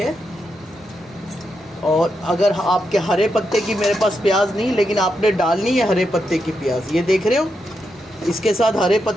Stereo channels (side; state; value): both; normal; correlation 0.84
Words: और अगर आपके हरे पत्ते की मेरे पास प्याज नहीं, लेकिन आपने डालनी है हरे पत्ते की प्याज, ये देख रहे हो। इसके साथ हरे